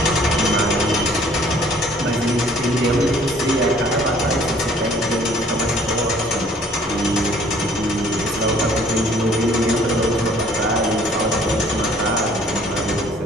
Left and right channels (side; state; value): both; normal; correlation 0.57